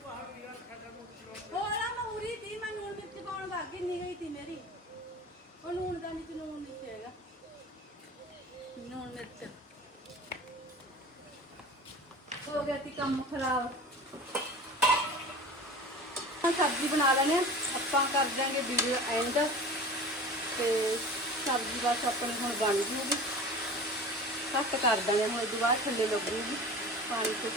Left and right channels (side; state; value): both; normal; correlation 0.37